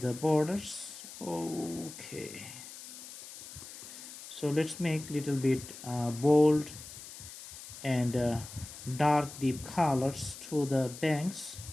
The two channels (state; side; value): noise; left; hiss, 14 dB below the sound